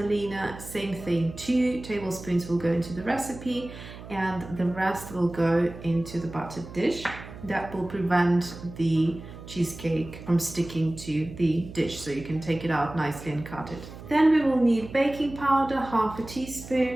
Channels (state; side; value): noise; right; hum, 14 dB below the sound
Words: Same thing, 2 tablespoons will go into the recipe and the rest will go into the buttered dish. That will prevent the cheesecake from sticking to the dish, so you can take it out nicely and cut it. Then we will need baking powder, half a